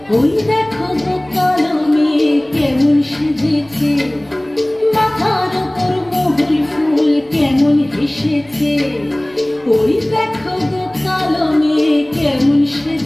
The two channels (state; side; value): noise; right; rumble, 28 dB below the sound